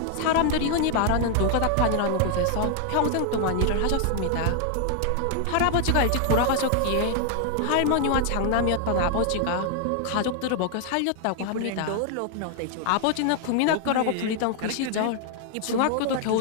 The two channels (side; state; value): both; different; correlation 0.00